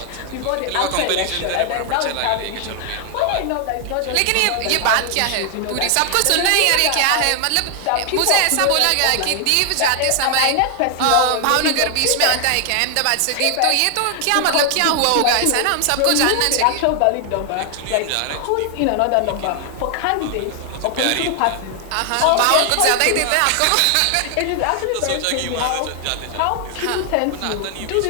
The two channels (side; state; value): both; different; correlation 0.00